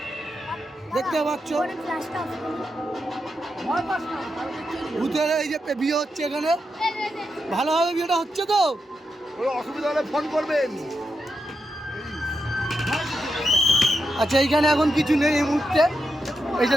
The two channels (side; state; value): both; normal; correlation 0.86